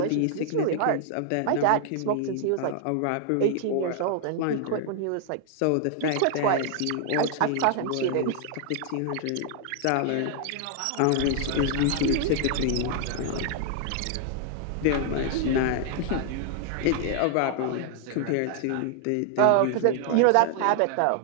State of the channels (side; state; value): both; different; correlation 0.00